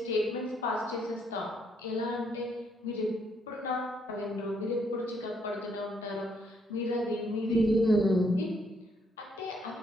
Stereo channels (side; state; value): both; normal; correlation 0.71